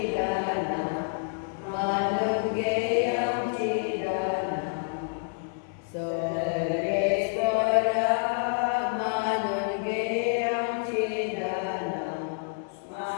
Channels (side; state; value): right; silent; 59 dB below the other